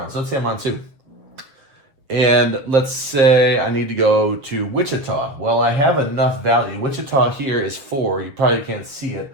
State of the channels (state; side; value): late; left; 7.5 ms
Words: So let's say I'm on 2. And let's say I need to go to Wichita. Well, I have enough value. Wichita here is 4. You probably can't see it,